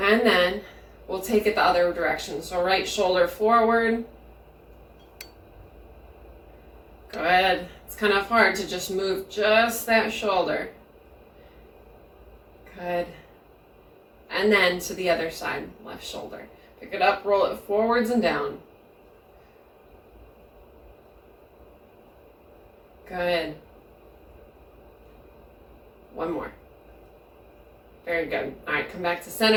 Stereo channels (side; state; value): both; identical; correlation 1.00